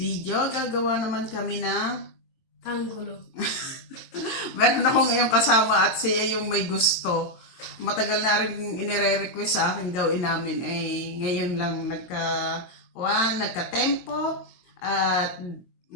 gagawa naman kami ng Tanggulo. meron ako ngayong kasama at siya yung may gusto. Matagal na rin inire-request sa akin gawin namin. Ngayon lang nagka-tempo at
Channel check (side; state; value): right; late; 22 ms